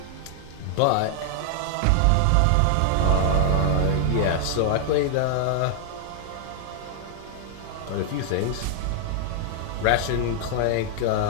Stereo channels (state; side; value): different; both; correlation 0.00